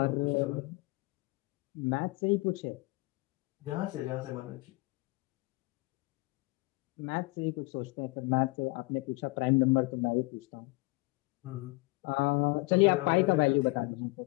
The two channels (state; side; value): quieter; right; 24.2 dB